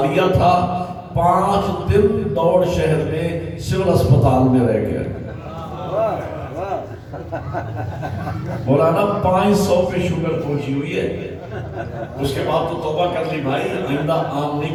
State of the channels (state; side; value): identical; both; correlation 1.00